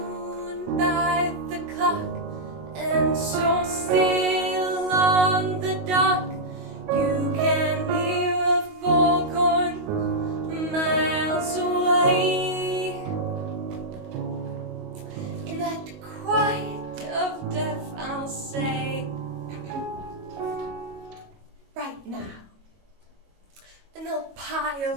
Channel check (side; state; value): left; late; 22 ms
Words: by the clock, and so still on the dock, you can hear a foghorn miles away. In that quiet of death, I'll say, right now. And they'll